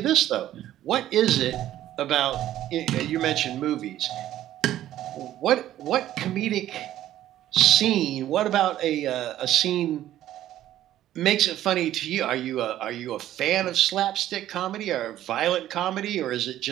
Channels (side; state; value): left; quieter; 12.9 dB